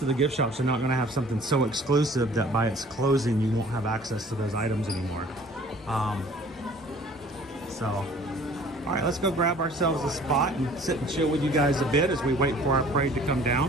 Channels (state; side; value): normal; both; correlation 0.51